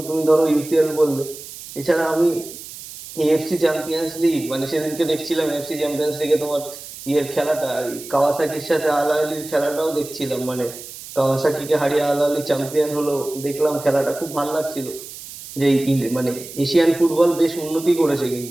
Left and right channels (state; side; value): noise; right; hiss, 14 dB below the sound